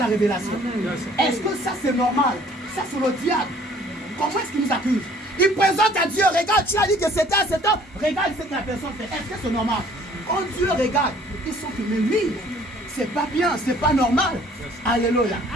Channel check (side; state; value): both; normal; correlation 0.56